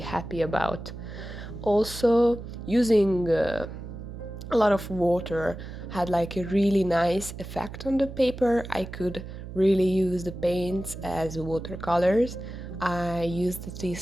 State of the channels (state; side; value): noise; right; hum, 11 dB below the sound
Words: about. Also, using a lot of water had like a really nice effect on the paper. I could really use the paints as watercolors. I used